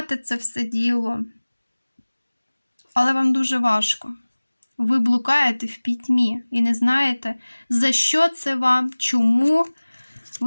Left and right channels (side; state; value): both; inverted; correlation -1.00